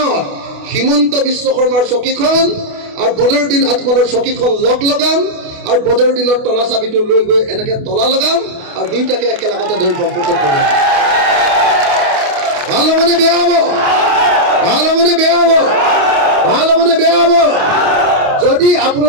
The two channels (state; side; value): late; left; 28 ms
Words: হিমন্ত বিশ্ব শৰ্মাৰ চকীখন আৰু বদৰুদ্দিন আজমলৰ চকীখন লগ লগাম, আৰু বদৰুদ্দিনৰ তলা চাবিটো লৈ গৈ এনেকে তলা লগাম, আৰু দুইটাকে একেলগতে ধৰি ব্ৰহ্মপুত্ৰত পেলাম। ভাল হ'বনে বেয়া হ'ব? ভাল হ'বনে বেয়া হ'ব? ভাল হ'বনে বেয়া হ'ব? যদি